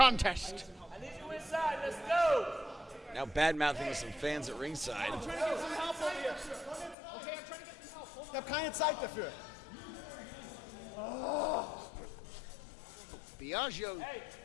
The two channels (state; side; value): drops out; right; at 7.0 s